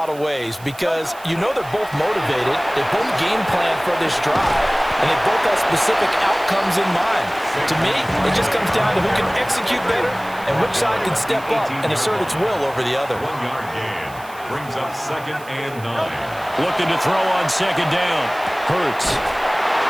of ways because you know they're both motivated, they both game plan for this drive, and they both have specific outcomes in mind. To me, it just comes down to who can execute better and which side can step up and assert its will over the other. 1 yard gain. Brings up 2nd and 9. Looking to throw on 2nd down. Hurts.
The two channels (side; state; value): right; noise; hiss, 21 dB below the sound